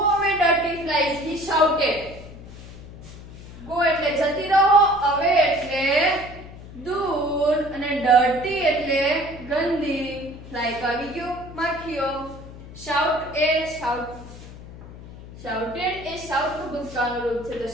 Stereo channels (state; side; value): noise; left; hum, 15 dB below the sound